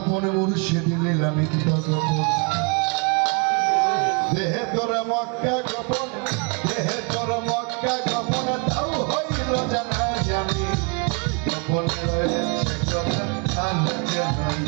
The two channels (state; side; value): quieter; left; 34.0 dB